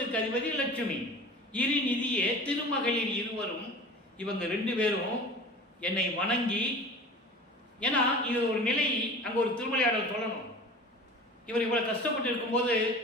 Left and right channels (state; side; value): normal; both; correlation 0.39